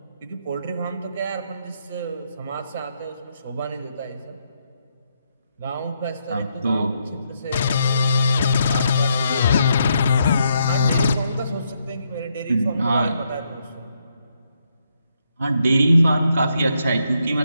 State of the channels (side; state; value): both; inverted; correlation -0.78